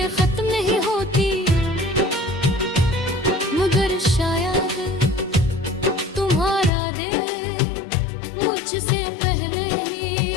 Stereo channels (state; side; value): drops out; right; at 6.7 s